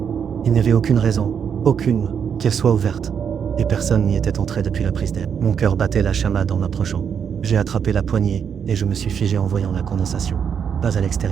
Il n'y avait aucune raison, aucune, qu'elle soit ouverte. Et personne n'y était entré depuis la prise d'air. Mon cœur battait la chamade en approchant. J'ai attrapé la poignée et je me suis figé en voyant la condensation. Pas à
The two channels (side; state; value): left; quieter; 7.5 dB